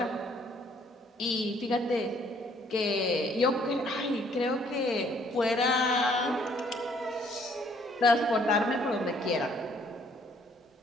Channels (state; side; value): normal; both; correlation 0.63